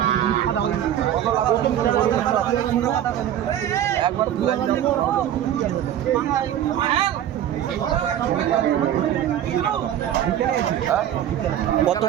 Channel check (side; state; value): left; quieter; 11.0 dB